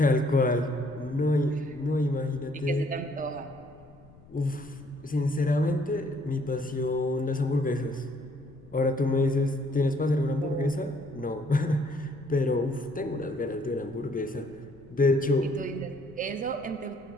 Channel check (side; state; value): left; noise; rumble, 24 dB below the sound